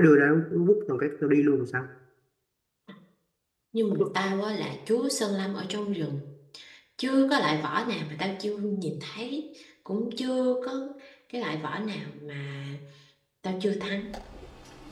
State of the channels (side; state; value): both; identical; correlation 1.00